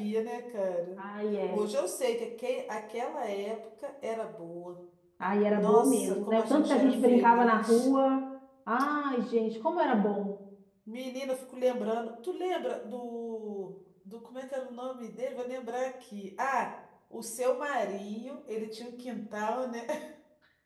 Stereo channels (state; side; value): identical; both; correlation 1.00